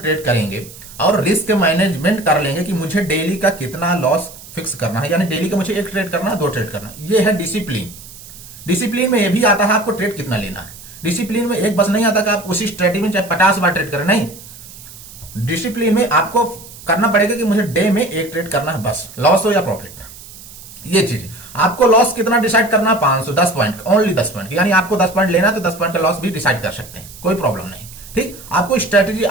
करेंगे और रिस्क मैनेजमेंट कर लेंगे कि मुझे डेली का कितना लॉस फिक्स करना है, यानी डेली का मुझे 1 ट्रेड करना है 2 ट्रेड करना है, ये है डिसिप्लिन। डिसिप्लिन में ये भी आता है आपको ट्रेड कितना लेना है। डिसिप्लिन में एक बस नहीं आता कि आप उसी स्ट्रेटेजी में चाहे 50 बार ट्रेड करें, नहीं। डिसिप्लिन में आपको करना पड़ेगा कि मुझे डे में 1 ट्रेड करना है बस, लॉस हो या प्रॉफिट। ये चीज आपको लॉस कितना डिसाइड करना है 500 10 पॉइंट, ओनली 10 पॉइंट, यानी आपको 10 पॉइंट लेना है तो 10 पॉइंट का लॉस भी डिसाइड कर सकते हैं, कोई प्रॉब्लम नहीं, ठीक, आपको स्ट्रेटेजी,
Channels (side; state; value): right; noise; hiss, 17 dB below the sound